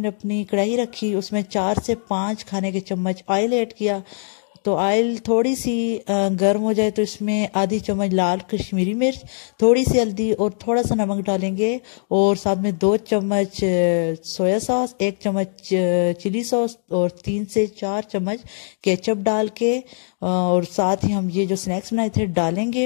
अपनी कढ़ाई रखी, उसमें 4 से 5 खाने के चम्मच ऑयल ऐड किया। तो ऑयल थोड़ी सी गर्म हो जाए तो इसमें आधी चम्मच लाल कश्मीरी मिर्च, थोड़ी सी हल्दी और थोड़ा सा नमक डालेंगे, और साथ में 2 चम्मच सोया सॉस, 1 चम्मच चिली सॉस और 3 से 4 चम्मच केचप डाल के और साथ ही हम ये जो स्नैक्स बनाए थे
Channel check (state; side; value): silent; right; digital silence